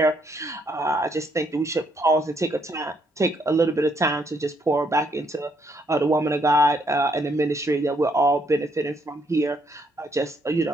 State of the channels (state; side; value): normal; both; correlation 0.72